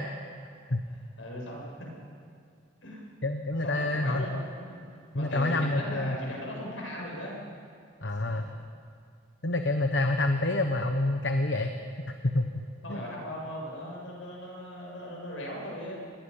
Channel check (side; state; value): both; normal; correlation 0.53